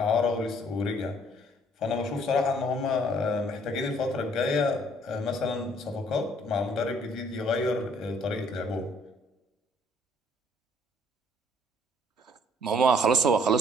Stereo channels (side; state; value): both; normal; correlation 0.62